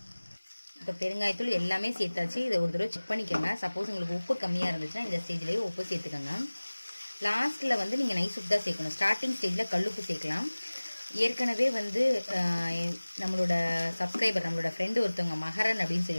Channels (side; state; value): both; inverted; correlation -1.00